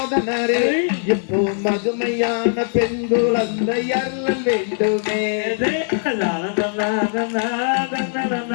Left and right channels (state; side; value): silent; right; 65 dB below the other